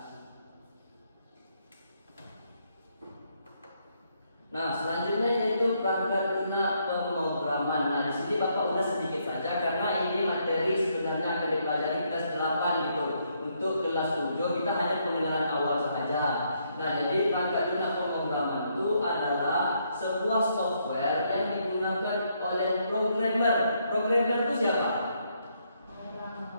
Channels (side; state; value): both; inverted; correlation -0.74